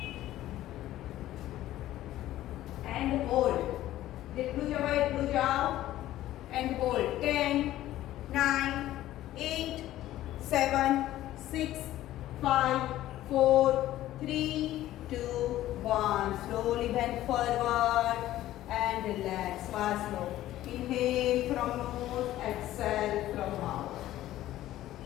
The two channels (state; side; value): quieter; right; 14.3 dB